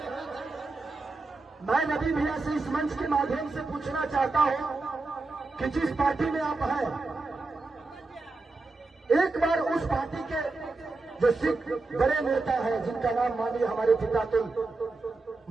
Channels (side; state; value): left; quieter; 3.6 dB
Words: मैं रवि भैया से इस मंच के माध्यम से पूछना चाहता हूं कि जिस पार्टी में आप हैं, एक बार उस पार्टी के जो सिख बड़े नेता है जिनका नाम मानिए हमारे पिता तो